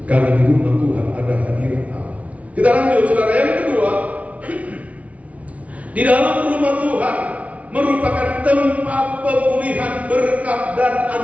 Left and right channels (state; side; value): late; left; 0.066 ms